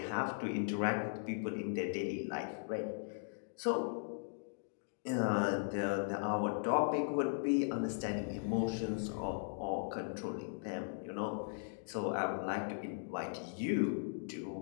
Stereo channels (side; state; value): right; silent; digital silence